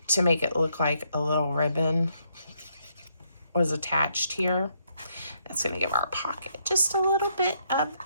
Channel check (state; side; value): inverted; both; correlation -0.74